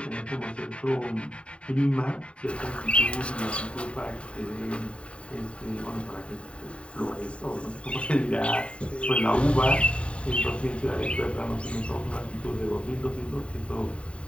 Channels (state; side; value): late; right; 0.060 ms